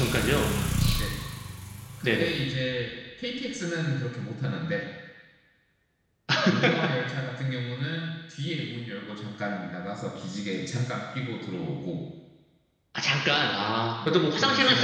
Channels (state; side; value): identical; both; correlation 1.00